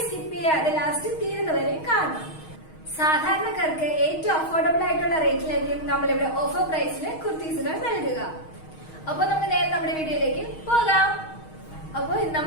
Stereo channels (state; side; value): late; right; 6.4 ms